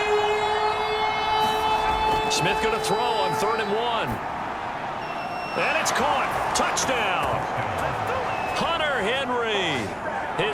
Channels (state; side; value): identical; both; correlation 1.00